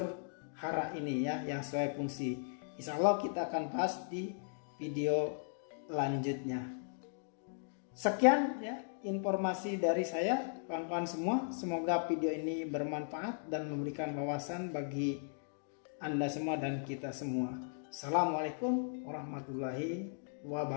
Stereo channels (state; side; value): silent; right; digital silence